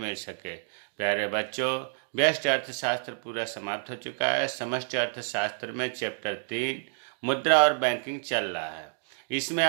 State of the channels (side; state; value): left; silent; digital silence